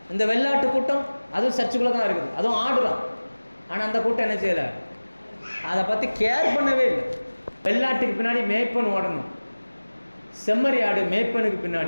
இந்த வெள்ளாட்டு கூட்டம் அதுவும் சர்ச்சுக்குள்ளே தான் இருக்குது, அதுவும் ஆடுதான். ஆனால் அந்த கூட்டம் என்ன செய்யலை, அதை பற்றி கேர் பண்ணவே இல்லை. வெள்ளாட்டுக்கு பின்னாடி மேய்ப்பன் ஓடணும், செம்மறி ஆடு மேய்ப்பனுக்கு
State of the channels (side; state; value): both; inverted; correlation -1.00